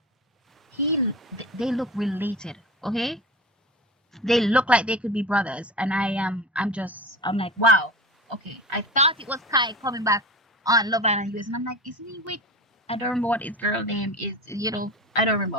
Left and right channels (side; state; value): both; normal; correlation 0.30